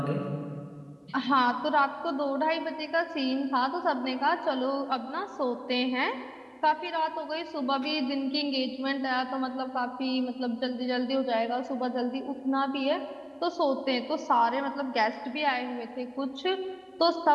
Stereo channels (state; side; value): identical; both; correlation 1.00